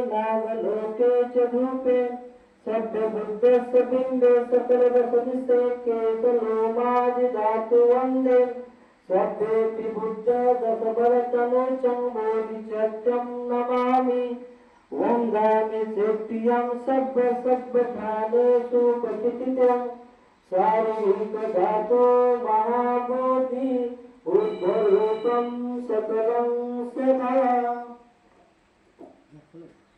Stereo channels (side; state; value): both; identical; correlation 1.00